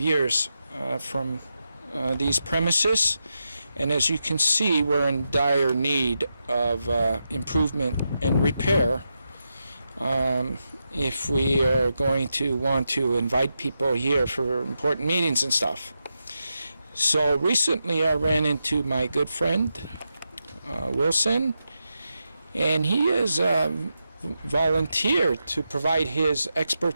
from these premises. And as you can see, we're in dire need of improvement and repair if we are going to want to invite people here for important meetings and stuff. So recently I ran into my good friend, Wilson, and he has volunteered to provide his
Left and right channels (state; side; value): inverted; both; correlation -0.87